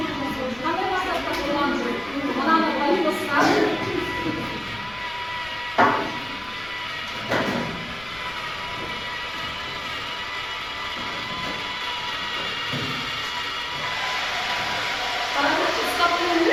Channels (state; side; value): noise; left; rumble, 20 dB below the sound